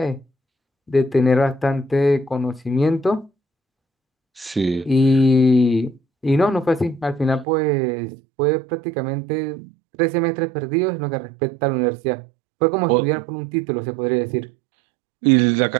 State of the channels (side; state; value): left; drops out; at 7.5 s